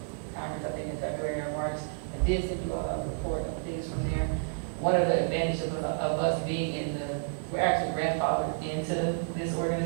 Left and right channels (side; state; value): left; silent; digital silence